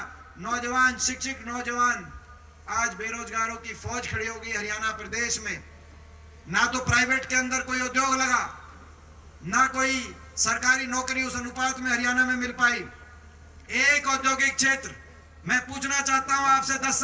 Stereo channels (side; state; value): both; identical; correlation 1.00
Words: नौजवान, शिक्षित नौजवान, आज बेरोजगारों की फौज खड़ी हो गई हरियाणा प्रदेश में। ना तो प्राइवेट के अंदर कोई उद्योग लगा, ना कोई सरकारी नौकरी उस अनुपात में हरियाणा में मिल पाई। एक औद्योगिक क्षेत्र मैं पूछना चाहता हूं आपसे, 10